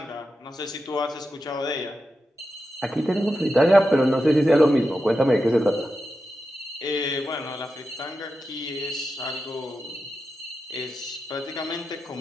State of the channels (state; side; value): normal; both; correlation 0.89